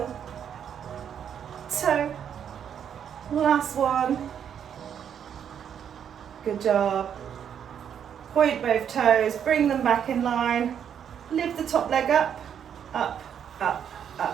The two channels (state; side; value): quieter; left; 8.5 dB